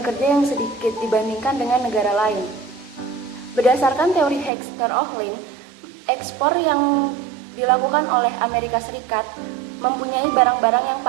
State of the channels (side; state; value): left; drops out; at 4.5 s